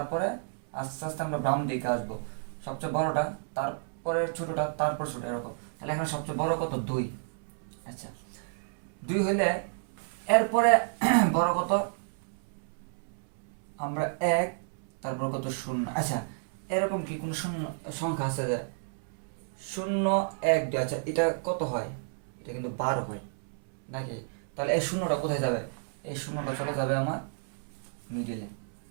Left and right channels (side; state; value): left; silent; 57 dB below the other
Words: আস্তে আস্তে আমরা বাম দিকে আসবো, সবচেয়ে বড়টা, তারপরে ছোটটা, তারপর ছোট, এরকম। তাহলে এখানে সবচেয়ে বড় কত? 2। আচ্ছা, 2 হইলে এরপরে বড় কত? আমরা 1, তারপর কত? 0। আচ্ছা, এরকম কি কোনো শূন্য সংখ্যা আছে যে 0 1 2? আচ্ছা, এটা কত হয়? এটা কিন্তু 12 হয় নাকি? তাহলে এই শূন্যটা কোথায় যাবে? এই শূন্যটা চলে যাবে আমার মিডিলে,